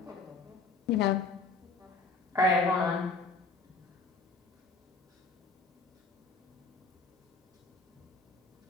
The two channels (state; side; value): quieter; right; 3.8 dB